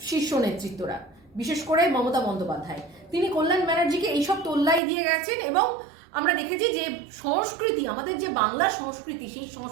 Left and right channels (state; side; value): drops out; left; at 4.8 s